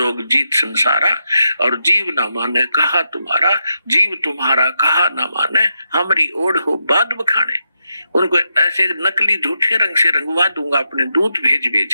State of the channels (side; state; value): both; inverted; correlation -0.84